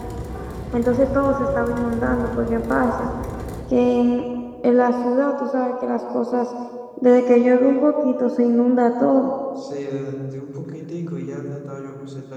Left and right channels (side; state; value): both; identical; correlation 1.00